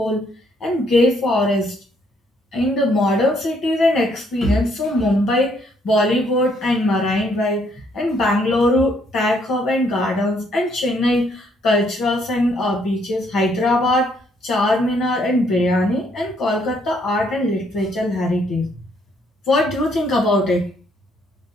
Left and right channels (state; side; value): normal; both; correlation 0.69